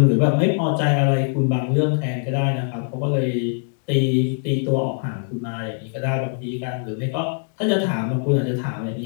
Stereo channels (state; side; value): silent; right; 64 dB below the other